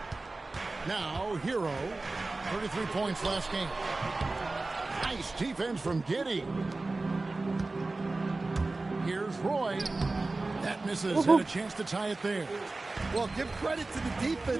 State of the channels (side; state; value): left; quieter; 3.3 dB